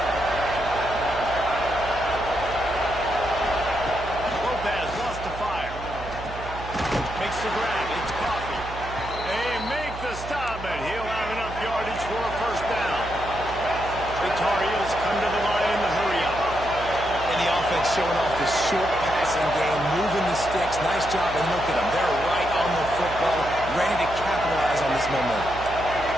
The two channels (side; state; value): right; noise; hum, 11 dB below the sound